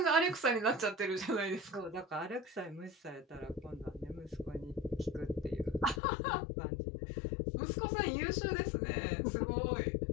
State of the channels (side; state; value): right; drops out; at 6.0 s